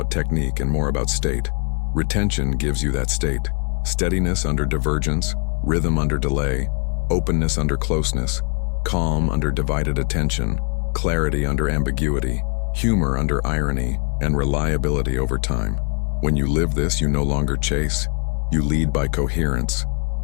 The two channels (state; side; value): quieter; right; 37.7 dB